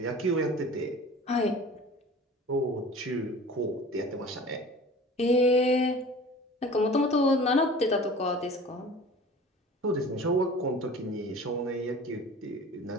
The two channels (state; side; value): normal; both; correlation 0.42